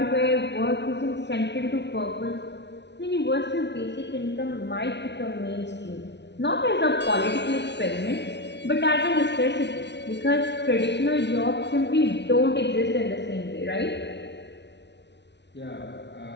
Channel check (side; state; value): right; late; 0.50 ms